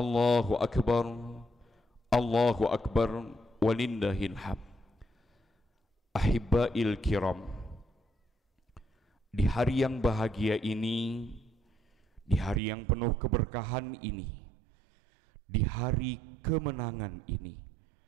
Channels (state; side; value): drops out; left; at 12.6 s